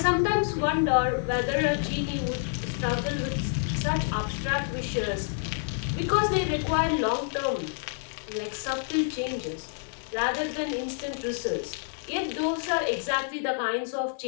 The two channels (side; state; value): right; silent; digital silence